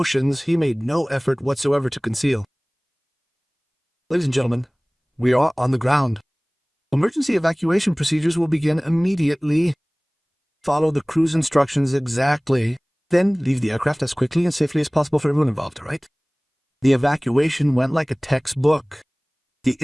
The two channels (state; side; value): identical; both; correlation 1.00